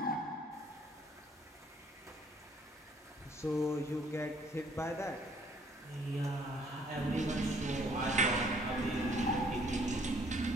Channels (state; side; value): normal; both; correlation 0.62